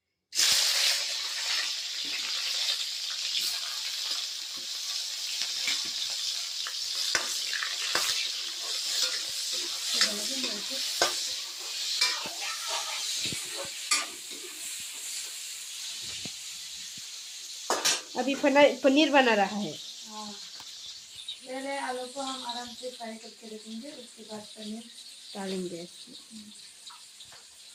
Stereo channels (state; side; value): identical; both; correlation 1.00